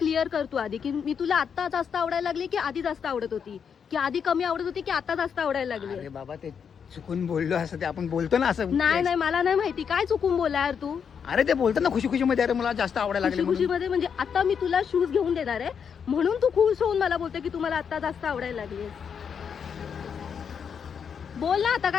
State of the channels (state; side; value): quieter; right; 7.1 dB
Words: कर तू आधी की मी तुला आता जास्त आवडायला लागली की आधी जास्त आवडत होती की आधी कमी आवडत होती की आता जास्त आवडायला लागली. अरे बाबा ते चुकून बोललो असं ते आपण बोलतो ना असं. नाही नाही मला नाही माहिती काय चुकून बोला यार तू. अरे ते बोलतात ना खुशी खुशी मध्ये अरे मला जास्त आवडायला खुशी लागले खुशी म्हणून. मध्ये म्हणजे आता मी तुला शूज घेऊन देणार आहे म्हणून तू खुश होऊन मला बोलते की तुम्हाला आता जास्त आवडायला लागली. बोल ना आता